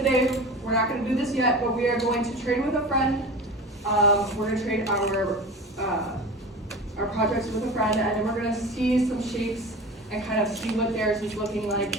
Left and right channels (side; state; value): both; normal; correlation 0.33